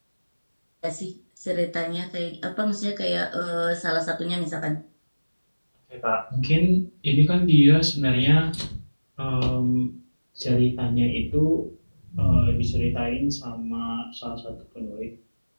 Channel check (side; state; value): both; inverted; correlation -1.00